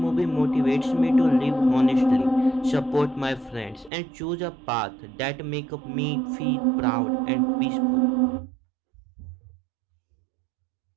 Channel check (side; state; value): left; drops out; at 3.9 s